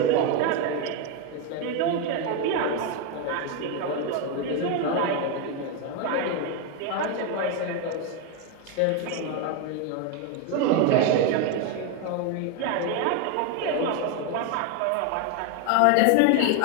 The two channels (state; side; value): different; both; correlation 0.02